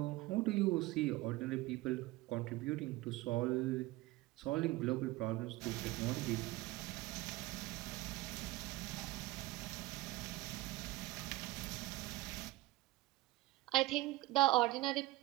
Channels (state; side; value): quieter; left; 19.3 dB